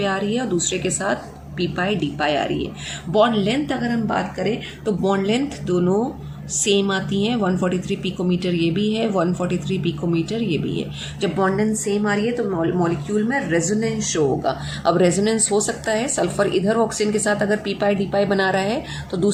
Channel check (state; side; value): identical; both; correlation 1.00